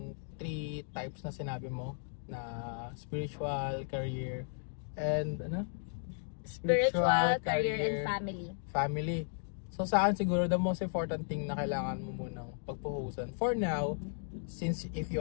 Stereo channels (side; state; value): right; silent; digital silence